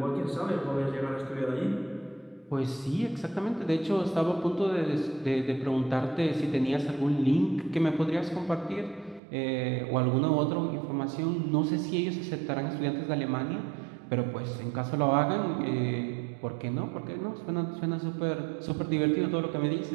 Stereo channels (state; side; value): drops out; left; at 9.2 s